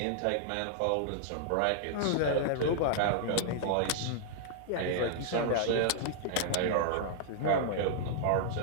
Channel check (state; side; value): different; both; correlation -0.01